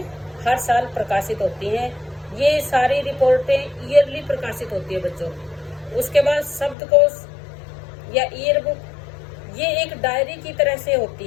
हर साल प्रकाशित होती हैं। ये सारी रिपोर्टें ईयरली प्रकाशित होती है बच्चों। उसके बाद शब्दकोश या ईयर बुक, ये एक डायरी की तरह से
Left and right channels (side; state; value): right; drops out; at 6.8 s